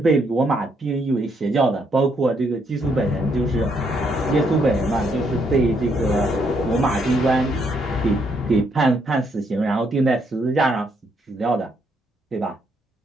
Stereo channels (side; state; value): both; normal; correlation 0.73